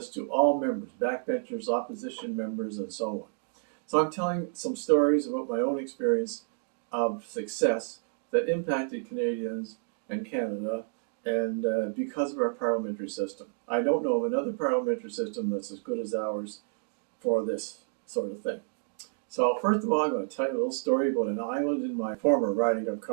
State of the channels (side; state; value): left; silent; 58 dB below the other